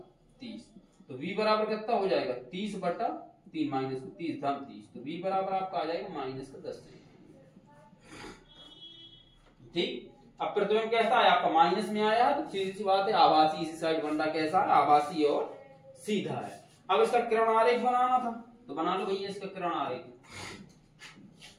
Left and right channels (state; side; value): identical; both; correlation 1.00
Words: तो v बराबर कितना हो जाएगा, 30/3 माइनस 30 धन 30, तो v बराबर आपका आ जाएगा माइनस का 10 सेंटीमीटर। ठीक, अब प्रतिबिंब कैसा है आपका, माइनस में आया, तो सीधी सी बात है आभासी इसी साइड बन रहा, कैसा है, आभासी और सीधा है। अब इसका किरण आरेख बनाना था, तो बना लो भैया इसका किरण आरेख।